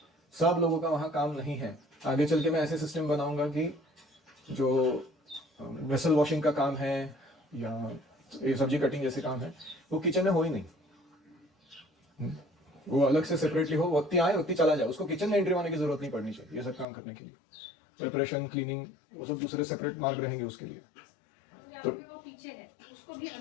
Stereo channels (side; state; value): right; drops out; at 16.9 s